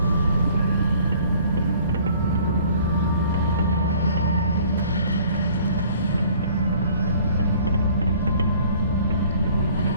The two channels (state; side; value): inverted; both; correlation -0.54